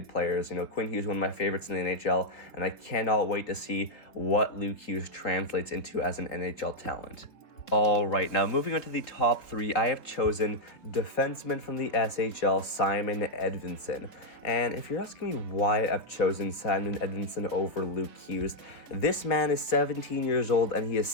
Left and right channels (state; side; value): late; right; 3.4 ms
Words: players. Quinn Hughes, one of my favorites in the NHL, and I cannot wait to see what Luke Hughes translates into as an NHL talent. All right, now moving on to the top 3, I have chosen defenseman from the SHL, Simon Edinson. And if you're asking me why I've chosen Simon Edinson over Luke Hughes, this man is 17 years old and he is